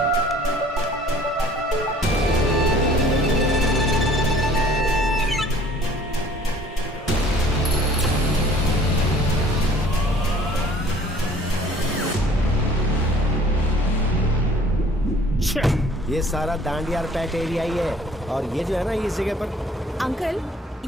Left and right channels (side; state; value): both; normal; correlation 0.53